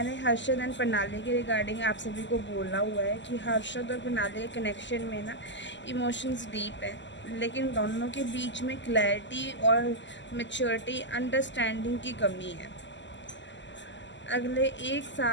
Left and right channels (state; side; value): late; right; 0.53 ms